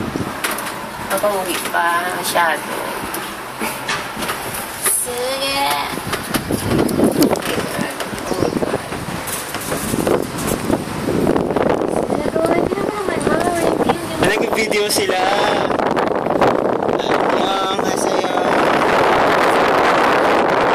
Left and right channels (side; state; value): both; identical; correlation 1.00